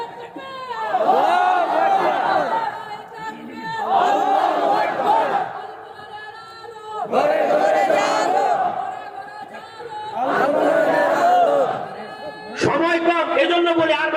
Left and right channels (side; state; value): both; identical; correlation 1.00